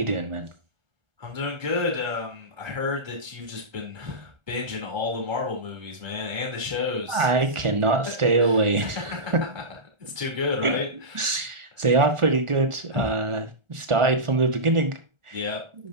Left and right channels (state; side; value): late; left; 1.4 ms